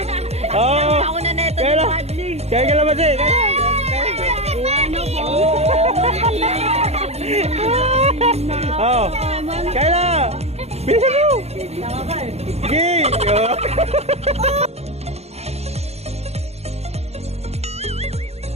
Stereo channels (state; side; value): late; left; 0.31 ms